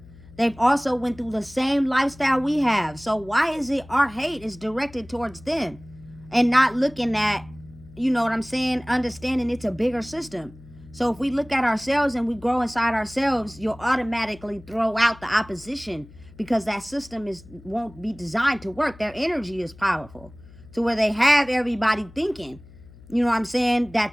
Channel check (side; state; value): left; noise; hum, 21 dB below the sound